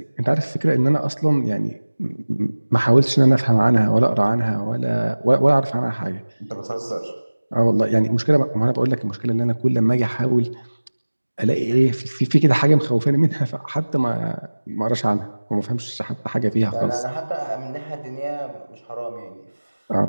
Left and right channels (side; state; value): both; inverted; correlation -1.00